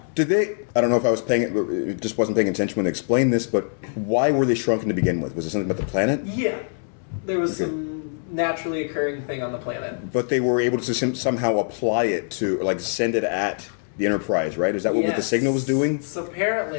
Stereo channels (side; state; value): right; silent; 63 dB below the other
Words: Did they? I don't know if I was it just wasn't paying attention when they explained this, but why were they shrunken to begin with? Was it something about the planet? Yeah. There was some naturally occurring thing on the planet. But they were able to somehow apply it to, send it at the Enterprise, right? Is that what the signal was doing? So